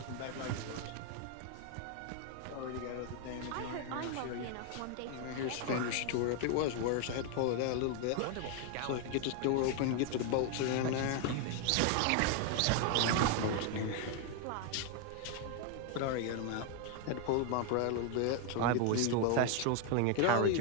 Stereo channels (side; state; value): both; different; correlation 0.01